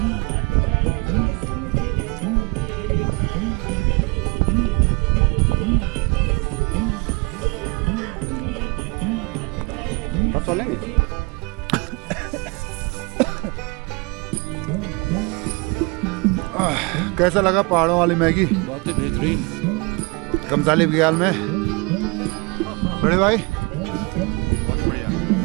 लेंगे। कैसा लगा पहाड़ों वाली मैगी? बहुत ही बेहतरीन। गमसाली बघियाल में बड़े भाई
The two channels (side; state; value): left; quieter; 27.8 dB